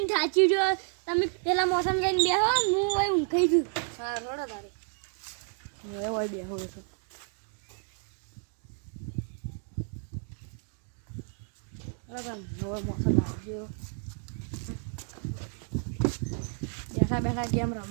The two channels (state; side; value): silent; left; 56 dB below the other